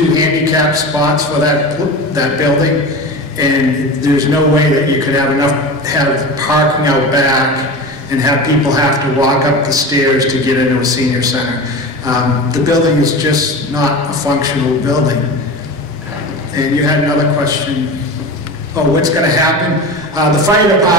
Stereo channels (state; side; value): normal; both; correlation 0.29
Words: handicap spots for that building. And there's no way that you could have parking out back and have people have to walk up the stairs to get into a senior center. The building is just not a functional building. And you had another question. Oh, what's going to happen? The fire